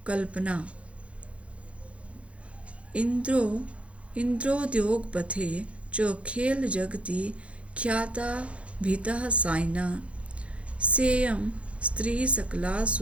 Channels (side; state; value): left; late; 0.062 ms